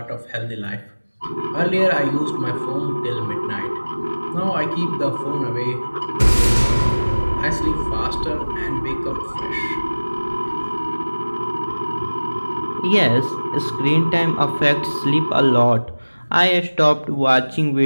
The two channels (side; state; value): both; inverted; correlation -1.00